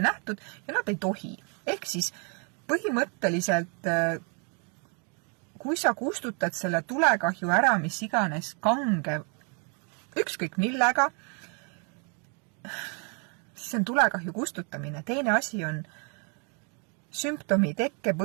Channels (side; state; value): left; quieter; 37.3 dB